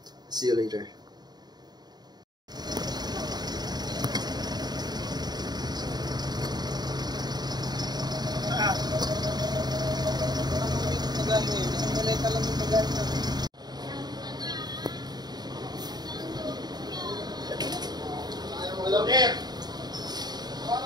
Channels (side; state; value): left; late; 0.20 ms